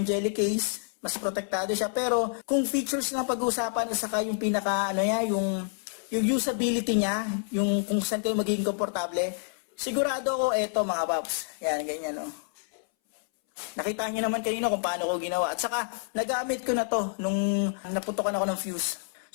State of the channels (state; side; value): silent; right; 59 dB below the other